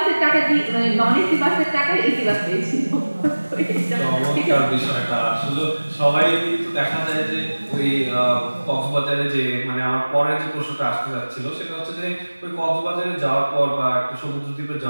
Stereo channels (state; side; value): inverted; both; correlation -1.00